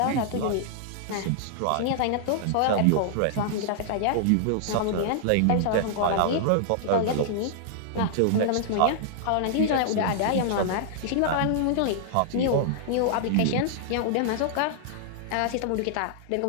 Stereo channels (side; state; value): both; different; correlation -0.01